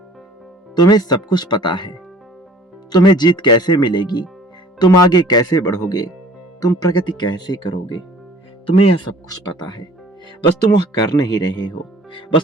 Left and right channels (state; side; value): normal; both; correlation 0.51